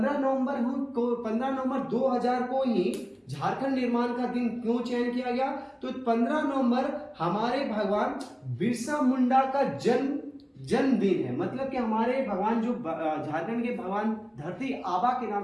नवंबर 2000 को ही झारखंड निर्माण का दिन क्यों चयन किया गया? तो 15 नवंबर हमारे भगवान बिरसा मुंडा का जन्मदिन है। मतलब कि हमारे भगवान जो झारखंड के भगवान धरती आबा के नाम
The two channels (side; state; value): both; identical; correlation 1.00